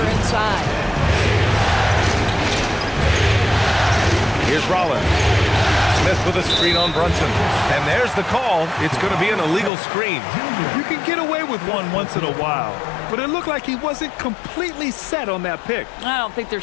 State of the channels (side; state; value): right; drops out; at 9.7 s